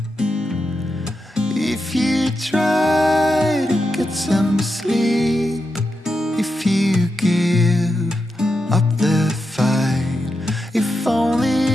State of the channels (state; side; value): normal; both; correlation 0.87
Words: if you try to get some sleep, if you give up the fight, if